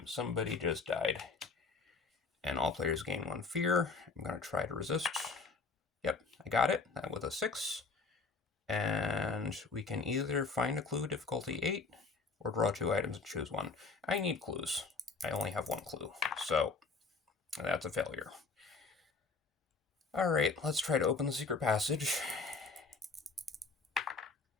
Somebody just died. And all players gain 1 fear. I'm going to try to resist. Yep, I got it. That with a 6. And we can either find a clue, difficulty 8, or draw 2 items and choose one. I need clues. I only have 1 clue, so that's a failure. Alright, let's try to open the secret passage.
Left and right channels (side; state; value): right; quieter; 4.3 dB